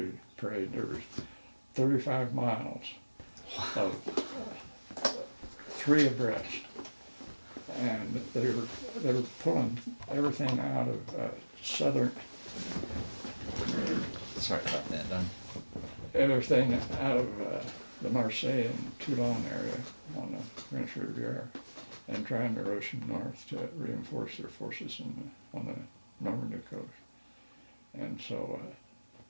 There was 35 miles of 3 abreast, and they were pulling everything out of southern. Sorry about that, Don. Everything out of the Marseille and Toulon area on the French Riviera, and trying to rush them north to reinforce their forces on the Normandy coast. And so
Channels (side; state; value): both; inverted; correlation -1.00